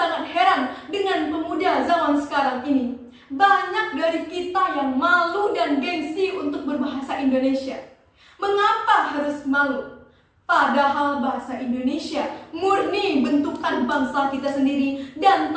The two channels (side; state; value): both; identical; correlation 1.00